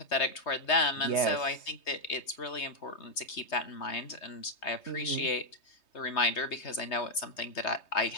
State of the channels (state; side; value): late; right; 3.2 ms